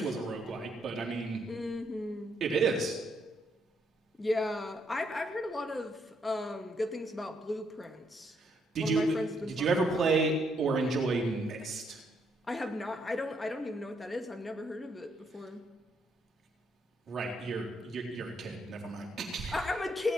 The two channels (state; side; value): normal; both; correlation 0.74